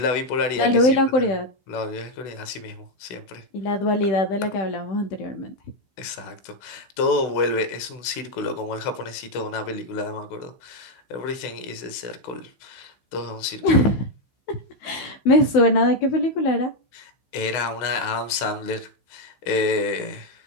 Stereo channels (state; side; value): late; right; 16 ms